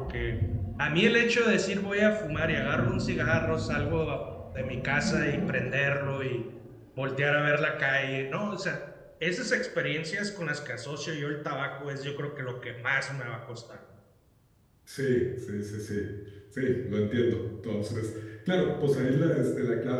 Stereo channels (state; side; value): identical; both; correlation 1.00